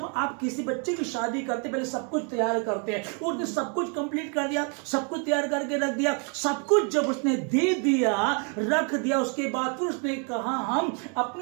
आप किसी बच्चे की शादी करते पहले सब कुछ तैयार करते हैं, उसने सब कुछ कंप्लीट कर दिया, सब कुछ तैयार करके रख दिया। सब कुछ जब उसने दे दिया, रख दिया, उसके बाद फिर उसने कहा हम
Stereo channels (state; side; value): quieter; left; 38.4 dB